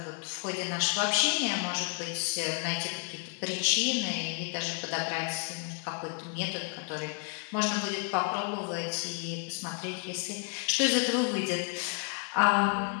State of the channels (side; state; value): right; quieter; 35.7 dB